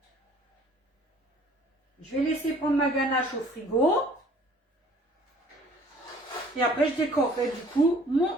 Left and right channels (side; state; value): both; normal; correlation 0.54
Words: Je vais laisser prendre ma ganache au frigo. Et après, je décorerai du coup